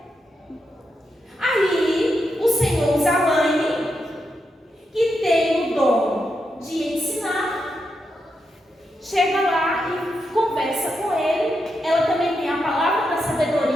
Aí o Senhor usa a mãe, que tem o dom de ensinar, chega lá e conversa com ele. Ela também tem a palavra da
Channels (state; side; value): normal; both; correlation 0.84